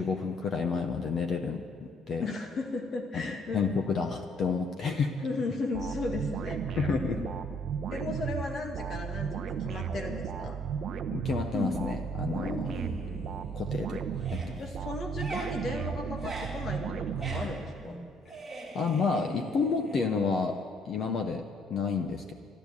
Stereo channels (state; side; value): normal; both; correlation 0.64